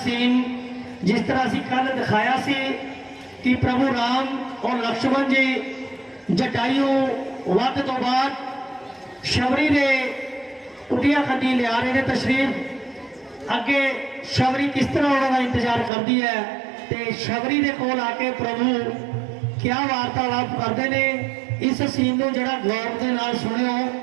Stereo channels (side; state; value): left; drops out; at 15.9 s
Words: सीन जिस तरह असीं कल दिखाया सी कि प्रभु राम और लक्ष्मण जी जटायू वध तो बाद शबरी ने कुटिया खड्डी लिया रहे हैं तशरीफ। अगे शबरी किस तरह उन्होंने इंतजार करती है तो शबरी के कोल आके प्रभु क्या वार्तालाप करते हैं। इस सीन को जरा गौर के नाल सुनियो।